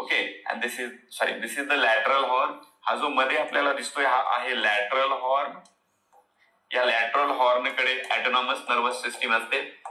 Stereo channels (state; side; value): identical; both; correlation 1.00